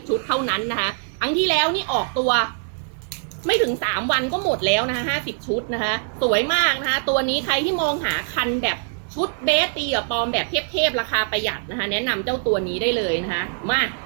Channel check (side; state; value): left; silent; digital silence